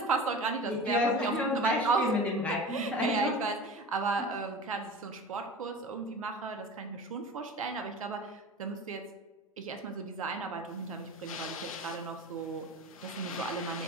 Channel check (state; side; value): normal; both; correlation 0.35